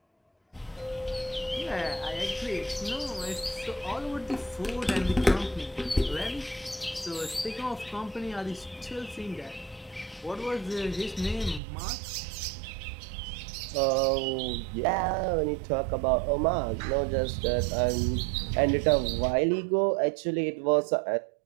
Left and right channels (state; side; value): drops out; left; at 11.6 s